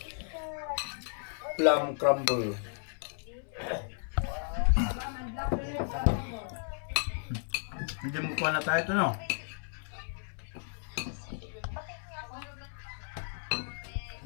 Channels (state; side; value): silent; right; 55 dB below the other